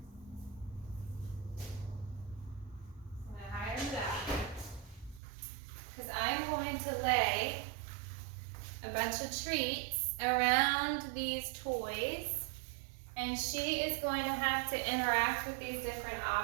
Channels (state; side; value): drops out; left; at 5.2 s